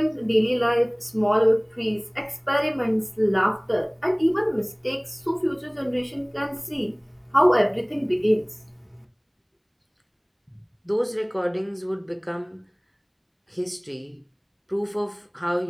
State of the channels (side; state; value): both; identical; correlation 1.00